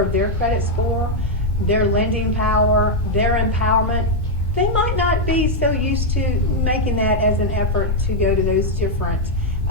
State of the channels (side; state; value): both; normal; correlation -0.01